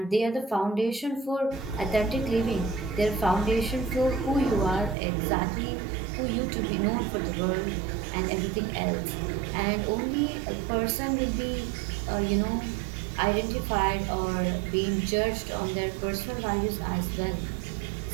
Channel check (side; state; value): left; drops out; at 5.0 s